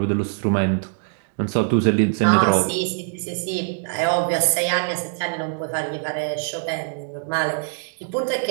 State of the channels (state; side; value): silent; left; digital silence